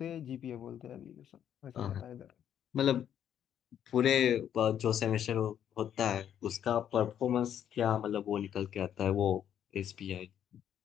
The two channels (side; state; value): right; quieter; 9.8 dB